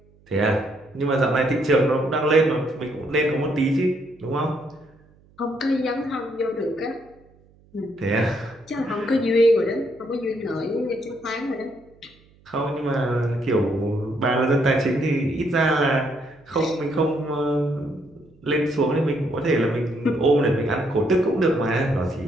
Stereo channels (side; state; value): right; noise; hum, 30 dB below the sound